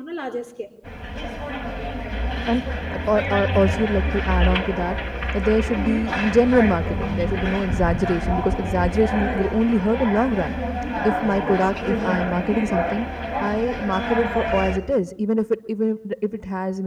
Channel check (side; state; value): both; identical; correlation 1.00